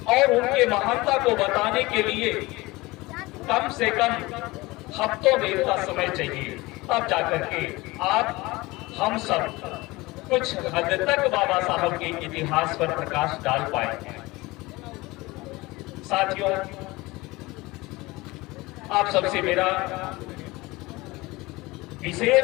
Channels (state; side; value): quieter; right; 21.5 dB